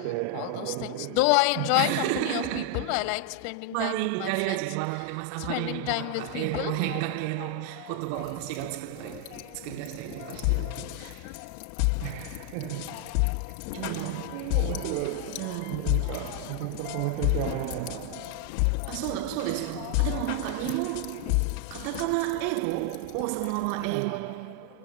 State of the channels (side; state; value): both; different; correlation 0.00